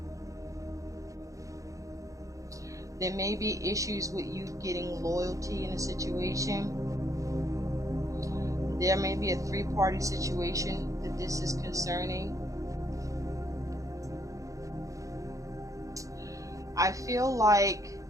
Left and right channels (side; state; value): left; late; 0.16 ms